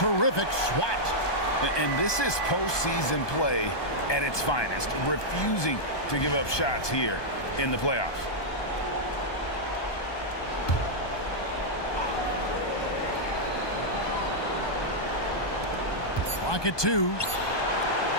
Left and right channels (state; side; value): late; right; 1.2 ms